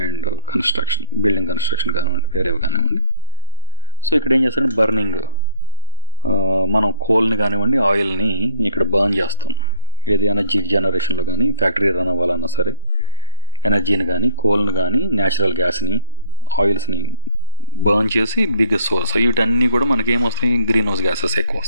అండ్ కన్స్ట్రక్షన్, బిల్డింగ్ కన్స్ట్రక్షన్ కానివ్వండి, వేరేవి కానివ్వండి. సో ఇక్కడ ఏం చేస్తారంటే బర్నింగ్, మనం కోల్ని కానివ్వండి ఆయిల్ని ఇక్కడ బర్న్ చేస్తాం. ఏది ఎనర్జీ జనరేషన్లో కానీ ఫ్యాక్టరీ రన్ అవ్వాలన్నా సరే ఎనర్జీని కానీ కోల్ని కానీ న్యాచురల్ గ్యాస్ని ఆయిల్స్ని బర్న్ చేసి బిగ్గెస్ట్ సోర్స్. వీటన్నీ కూడా మనకి ఏమొస్తాయి, గ్రీన్ హౌస్ గ్యాసెస్ ఎక్కువ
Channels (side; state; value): both; inverted; correlation -0.47